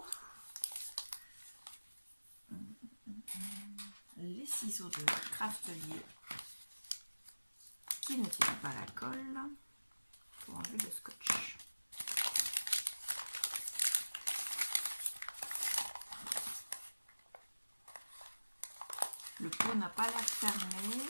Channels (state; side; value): inverted; both; correlation -1.00